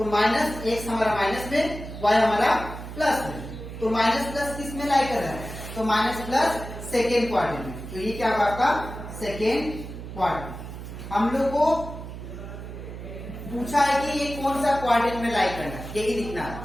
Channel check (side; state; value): right; noise; hum, 10 dB below the sound